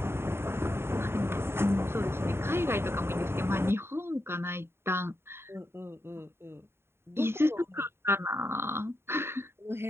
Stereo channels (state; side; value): late; left; 0.12 ms